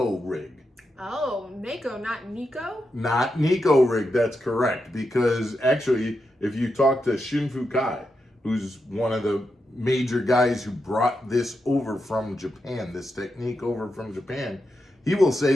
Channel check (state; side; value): normal; both; correlation 0.86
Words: Rig. Oh, Neko, not Nico? Not Neko Rig, that's correct. Because actually, if you talk to Shinfu Kai, who's one of the major guys who brought this over from Japan, this technique over from Japan, he will say